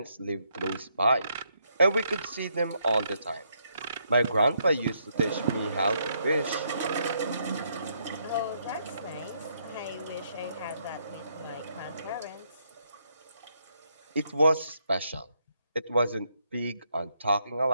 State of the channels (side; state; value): both; inverted; correlation -0.75